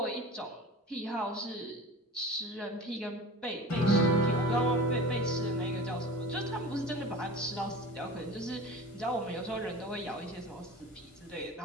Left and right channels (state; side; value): normal; both; correlation 0.37